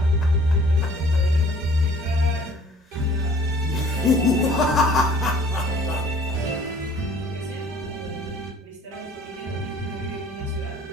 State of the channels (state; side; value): normal; both; correlation 0.54